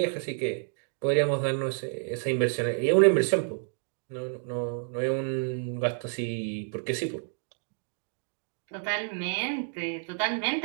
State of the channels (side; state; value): left; silent; digital silence